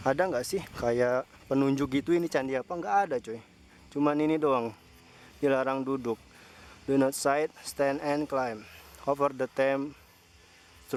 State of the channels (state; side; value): identical; both; correlation 1.00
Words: nggak sih kayak penunjuk gitu ini candi apa? Nggak ada cuy. Cuman ini doang. Dilarang duduk. Do not sit, stand and climb over the temp